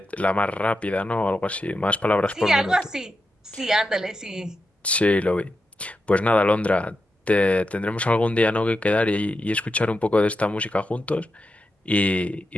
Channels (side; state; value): both; normal; correlation 0.88